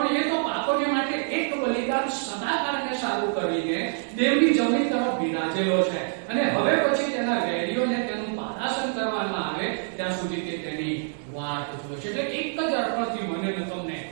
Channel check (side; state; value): left; silent; 59 dB below the other